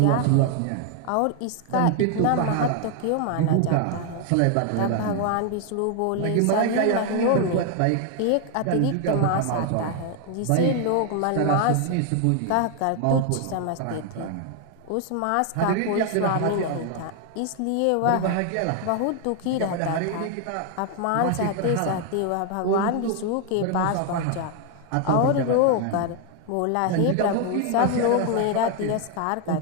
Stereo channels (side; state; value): both; different; correlation 0.00